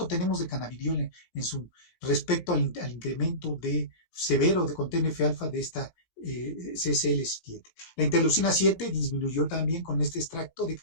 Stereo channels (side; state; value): right; late; 17 ms